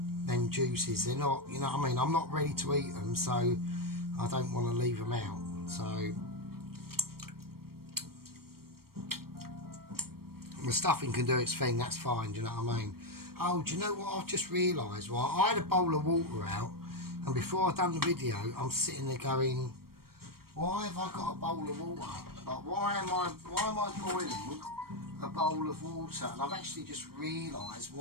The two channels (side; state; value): left; late; 0.94 ms